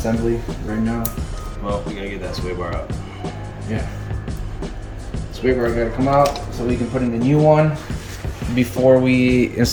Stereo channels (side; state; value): both; identical; correlation 1.00